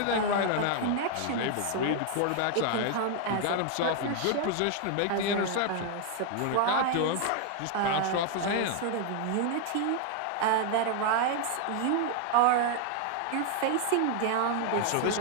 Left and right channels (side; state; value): both; different; correlation 0.00